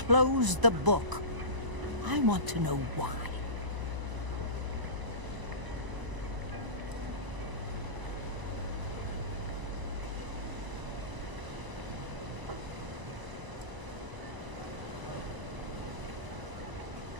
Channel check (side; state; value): left; late; 1.0 ms